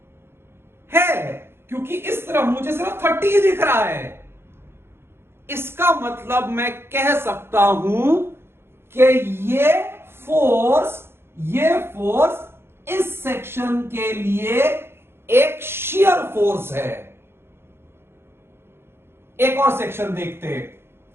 क्योंकि इस तरफ मुझे सिर्फ 30 ही दिख रहा है। इसका मतलब मैं कह सकता हूं कि ये फोर्स इस सेक्शन के लिए एक शियर फोर्स है। एक और सेक्शन देखते हैं,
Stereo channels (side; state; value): left; late; 0.11 ms